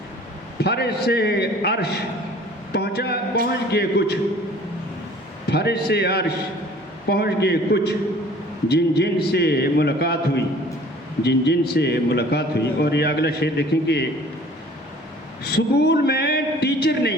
फर्श से अर्श पहुँच गए कुछ, फर्श से अर्श पहुँच गए कुछ, जिन जिन से मुलाकात हुई, जिन जिन से मुलाकात हुई। और ये अगला शेर देखेंगे, स्कूल में टीचर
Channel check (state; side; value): normal; both; correlation 0.50